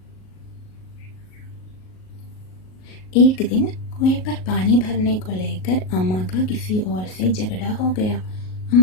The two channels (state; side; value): late; right; 38 ms